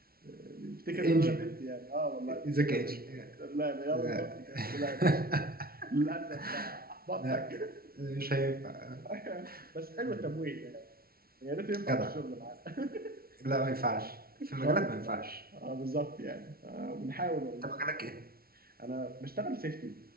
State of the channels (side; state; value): left; late; 0.44 ms